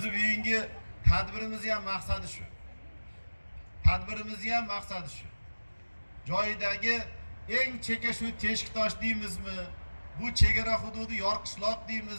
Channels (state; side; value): inverted; both; correlation -1.00